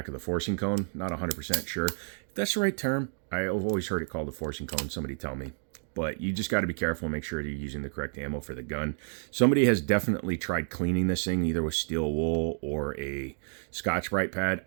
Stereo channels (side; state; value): left; silent; 55 dB below the other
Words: of the forcing cone. Not 100% sure. If that's the right term, I've always heard it called the forcing cone. Somebody tell me. But you just got to be careful and make sure you're using the correct ammo for the gun. Somebody has definitely tried cleaning this thing, either with steel wool or a Scotch-Brite pad.